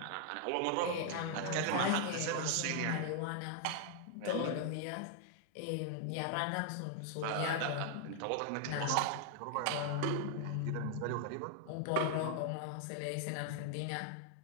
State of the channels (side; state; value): both; different; correlation 0.00